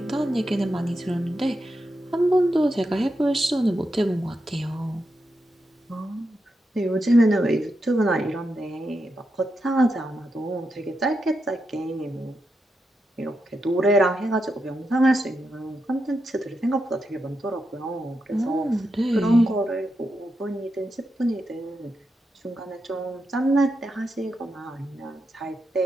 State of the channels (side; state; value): both; normal; correlation 0.86